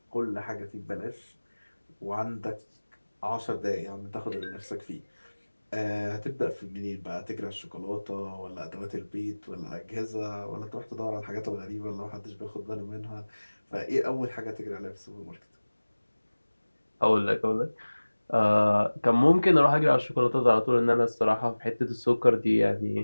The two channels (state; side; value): inverted; both; correlation -1.00